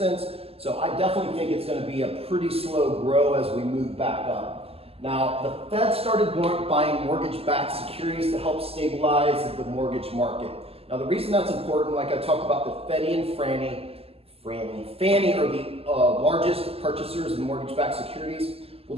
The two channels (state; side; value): late; left; 0.29 ms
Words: So I definitely think it's going to be a pretty slow grow as we move back up. Now, the Fed started buying mortgage-backed securities to help stabilize the mortgage market. Now, the reason that's important, like I talked about, the Freddie and Fannie are the largest purchasers of mortgage-backed securities. Well,